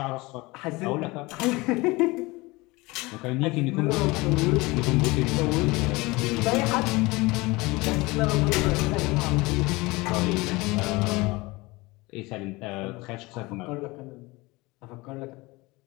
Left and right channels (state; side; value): quieter; right; 22.9 dB